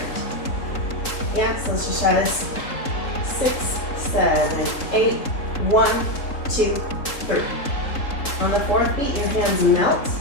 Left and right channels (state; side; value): late; right; 3.8 ms